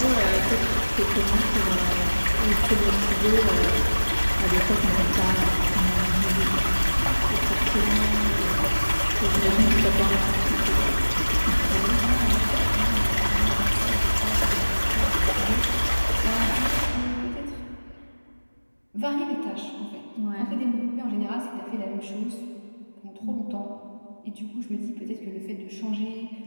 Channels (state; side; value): inverted; both; correlation -1.00